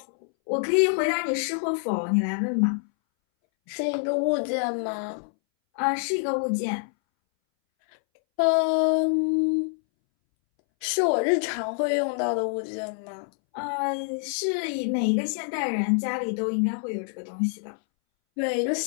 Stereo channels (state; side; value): silent; right; 61 dB below the other